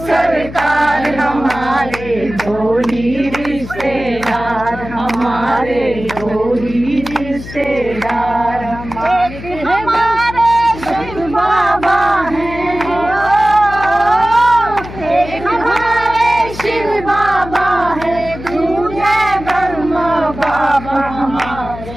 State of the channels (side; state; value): left; noise; hum, 12 dB below the sound